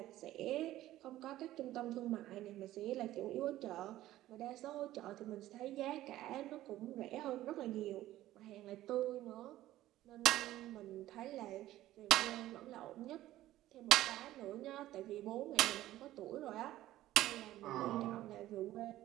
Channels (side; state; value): left; quieter; 14.7 dB